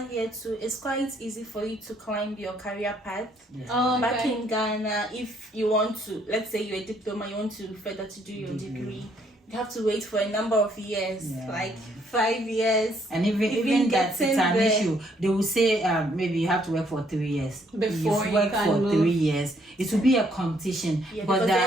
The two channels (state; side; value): normal; both; correlation 0.68